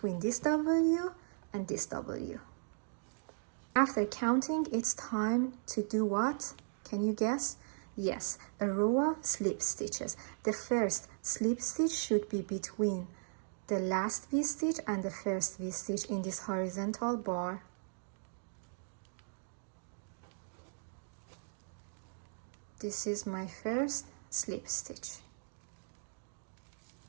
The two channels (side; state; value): left; silent; digital silence